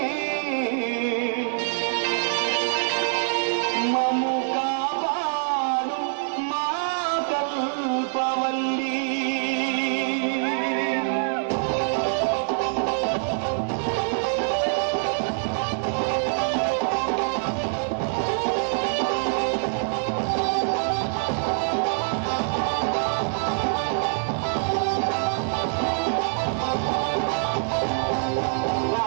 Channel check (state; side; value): silent; left; digital silence